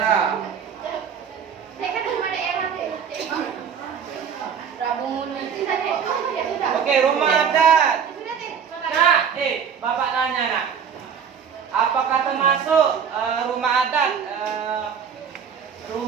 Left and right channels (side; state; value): left; quieter; 7.3 dB